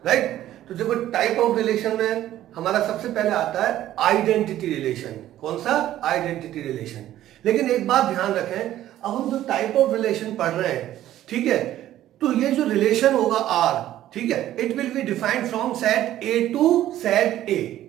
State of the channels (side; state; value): left; quieter; 13.1 dB